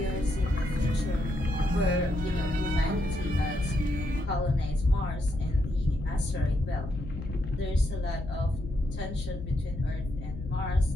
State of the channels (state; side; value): noise; left; hum, 9 dB below the sound